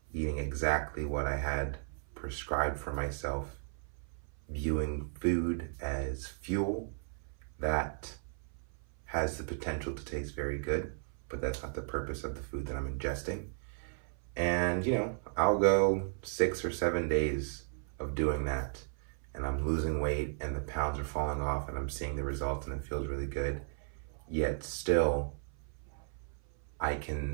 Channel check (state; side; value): silent; left; 54 dB below the other